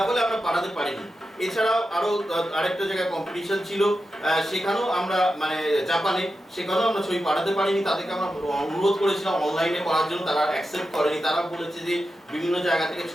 ফলে আমরা পাঠাতে পারিনি। এছাড়াও আরো আরেকটা জায়গায় কম্পিটিশন ছিল, সেখানেও আমরা মানে জাপানে, সেখানেও আমরা ছবি পাঠাতে পারিনি। তাদেরকে আমরা অনুরোধ করেছিলাম অনলাইনে করার জন্য, তারা অ্যাকসেপ্ট করেনি। তারা বলেছে যে বিভিন্ন জায়গা থেকে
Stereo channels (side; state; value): both; normal; correlation 0.90